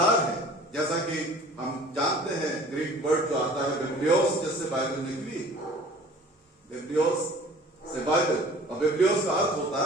है। जैसा कि हम जानते हैं, ग्रीक वर्ड जो आता है बिब्लियोस, जिससे बाइबल निकली, बिब्लियोस से बाइबल, और बिब्लियोस का अर्थ होता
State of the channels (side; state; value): both; normal; correlation 0.48